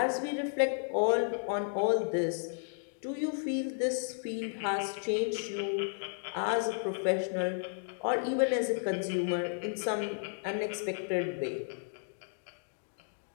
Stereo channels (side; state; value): right; silent; digital silence